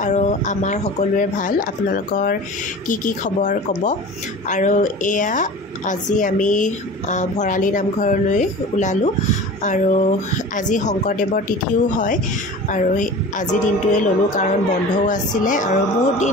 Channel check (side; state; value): both; normal; correlation 0.37